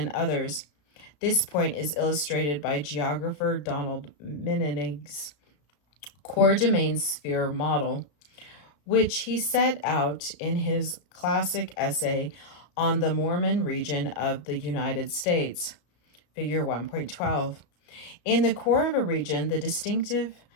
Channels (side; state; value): right; late; 34 ms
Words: others. This point is illustrated by geographer Donald Mening's core domain sphere model, which he set out in his classic essay on the Mormon region of the United States, Figure 1.12. In the core of a region, the distinctive